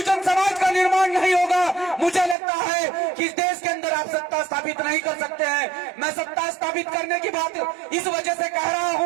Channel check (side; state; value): left; drops out; at 2.4 s